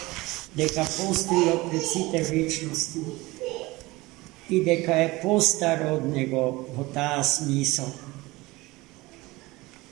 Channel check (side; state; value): left; quieter; 21.1 dB